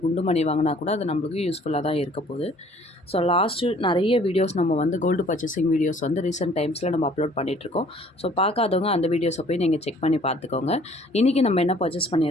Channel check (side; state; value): both; normal; correlation 0.56